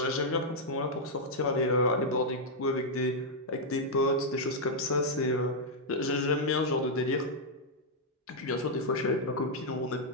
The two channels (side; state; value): both; normal; correlation -0.04